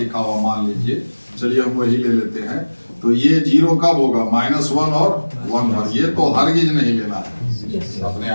हुआ, मान लीजिए, चलिए हम वही ले लेते हैं, तो ये 0 कब होगा, -1 और 1 पर। ये तो हरगिज नहीं लेना है अपने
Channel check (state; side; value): inverted; both; correlation -1.00